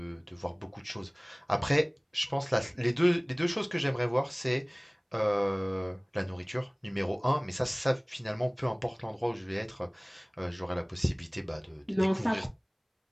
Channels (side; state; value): both; identical; correlation 1.00